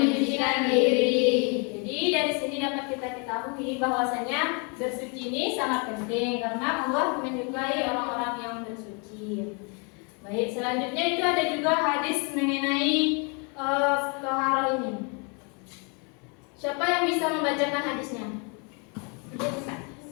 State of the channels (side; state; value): right; quieter; 34.7 dB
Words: mengetahui bahwasanya bersuci ini sangat penting karena Allah menyukai orang-orang yang bersuci. Baik, selanjutnya itu ada juga hadis mengenai toharoh ini. Siapa yang bisa membacakan hadisnya?